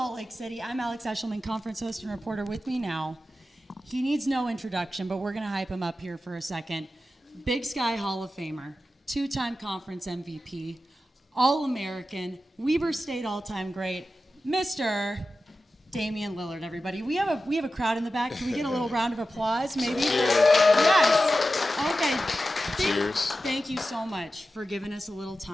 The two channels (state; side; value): normal; both; correlation 0.93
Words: Lake City. I'm Alex Eshelman, conference host and reporter. With me now, he needs no introduction, but we're going to hype him up here for a second. Big Sky Hall of Famer, two-time conference MVP, All-American, Weber State all-time great, Mr. Damian Lillard, everybody. We have a crowd in the back. Can we get a little round of applause, maybe? Yes. Okay. Cheers. Thank you so much for giving us a little